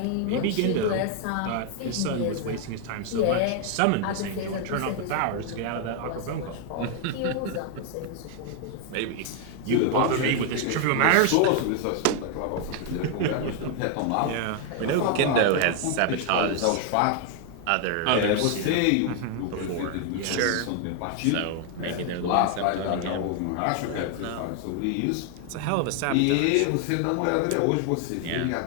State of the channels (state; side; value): different; both; correlation 0.00